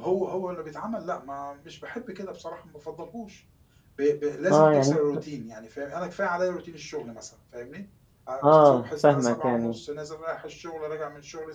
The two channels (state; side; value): identical; both; correlation 1.00